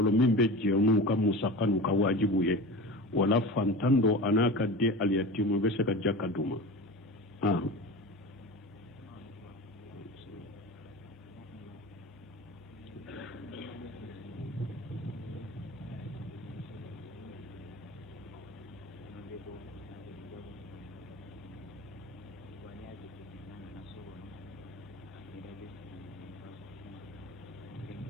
min be jenu ka musakanu ka wajibu ye wala fantando anaka de al yatimu be saka jaka duma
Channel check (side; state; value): both; normal; correlation 0.32